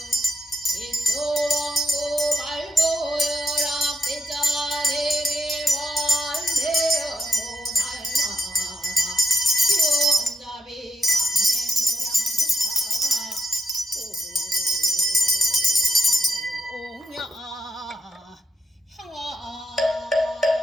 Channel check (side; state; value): both; normal; correlation 0.81